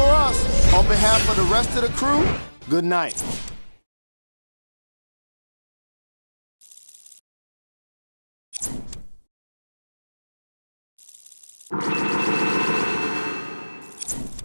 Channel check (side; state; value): both; inverted; correlation -1.00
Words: us. On behalf of the rest of the crew, good night.